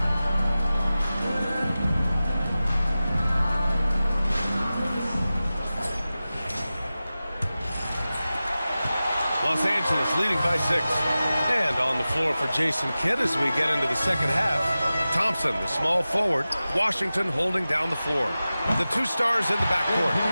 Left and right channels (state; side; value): inverted; both; correlation -0.95